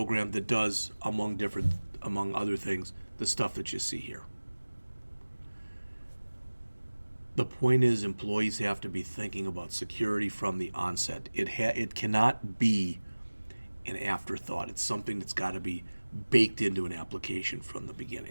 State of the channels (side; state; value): both; inverted; correlation -1.00